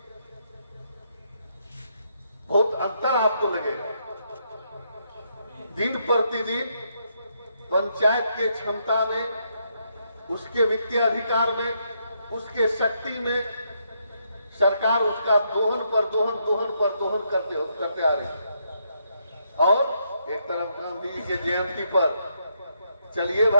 बहुत अंतर आपको लगेगा। दिन प्रतिदिन पंचायत के क्षमता में, उसके वित्तीय अधिकार में, उसके शक्ति में सरकार उसका दोहन पर दोहन करते आ रही है। और एक तरफ गांधी जी के जयंती पर चलिए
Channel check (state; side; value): inverted; both; correlation -0.77